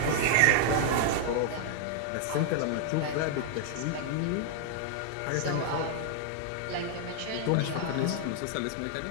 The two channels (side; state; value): both; different; correlation 0.00